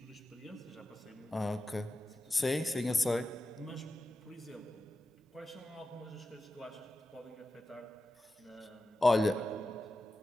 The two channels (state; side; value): normal; both; correlation 0.92